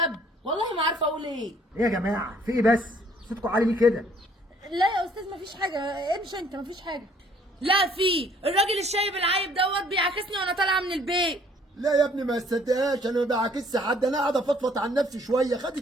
والله ما عارفه اقول ايه. ايه يا جماعه في ايه بس؟ صوتكم عالي ليه كده؟ لا يا استاذ مفيش حاجه، امشي انت مفيش حاجه. لا في الراجل الشايب العايب دوت بيعاكسني وانا طالعه من البيت. لا يا ابني ما تصدقهاش، انا ما بعاكسش حد، انا قاعد افضفض عن نفسي شويه.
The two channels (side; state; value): both; normal; correlation 0.60